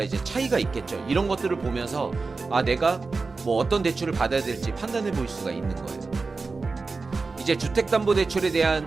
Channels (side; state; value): left; quieter; 4.1 dB